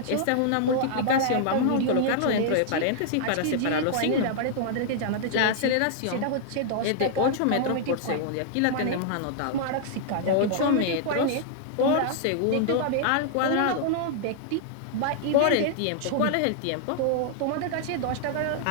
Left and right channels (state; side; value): different; both; correlation -0.01